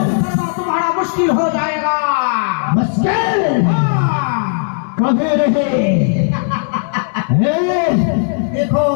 तुम्हारा मुश्किल हो जाएगा। मुश्किल कभी नहीं। देखो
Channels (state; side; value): silent; right; digital silence